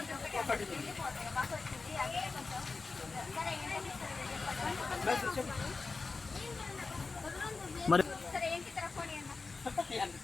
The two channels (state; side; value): quieter; right; 4.1 dB